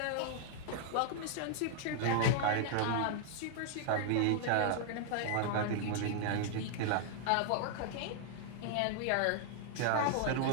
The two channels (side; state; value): both; different; correlation 0.00